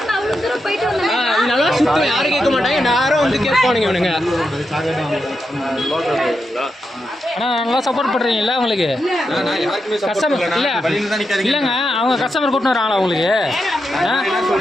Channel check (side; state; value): both; normal; correlation 0.86